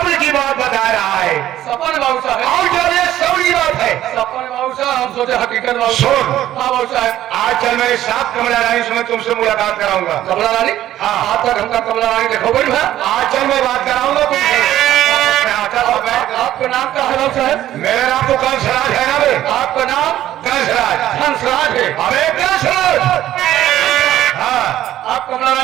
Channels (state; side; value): quieter; left; 13.0 dB